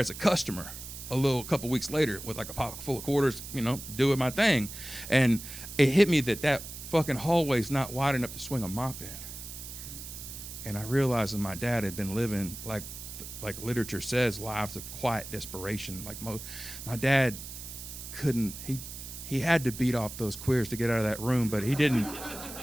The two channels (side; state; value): right; noise; hiss, 11 dB below the sound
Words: a customer a couple weeks later with like a pocket full of quarters, you know, doing my thing. And it hit me that fucking hallway's not wide enough to swing a mop in. And I realized that my dad had been living like literature says, lives of quiet desperation. Like my dad couldn't, he had to beat off those queers to get out of that room, but he didn't